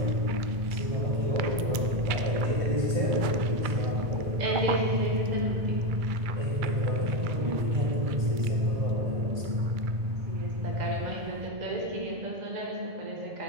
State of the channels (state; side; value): late; left; 2.2 ms